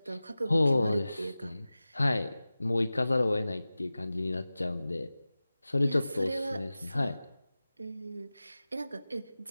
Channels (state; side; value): inverted; both; correlation -0.97